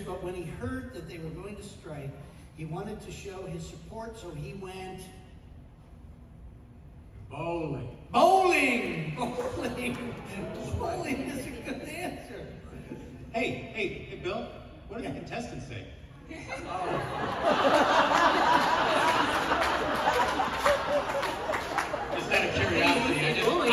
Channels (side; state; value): both; identical; correlation 1.00